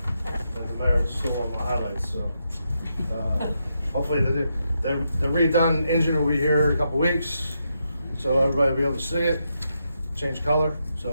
mayor's still on my highlights, so hopefully the redone engine will be here in a couple weeks, so everybody will be able to see it, change color,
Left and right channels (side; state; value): both; inverted; correlation -0.83